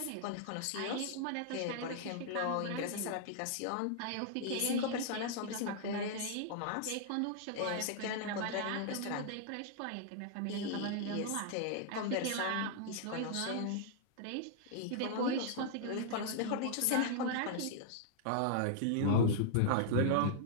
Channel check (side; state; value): both; different; correlation -0.01